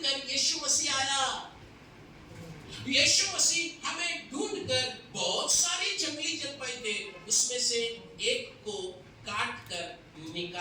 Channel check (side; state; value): both; identical; correlation 1.00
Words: यीशु मसीह आया। यीशु मसीह हमें ढूंढ कर, बहुत सारी जंगली जलपाई थे, उसमें से एक को काट कर